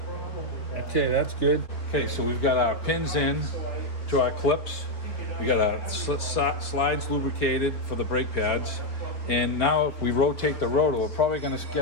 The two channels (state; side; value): late; right; 3.8 ms